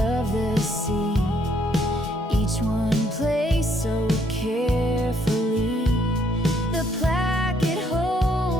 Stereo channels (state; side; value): normal; both; correlation 0.69